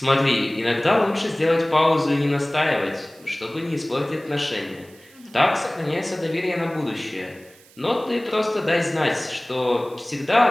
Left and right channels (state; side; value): noise; right; hiss, 26 dB below the sound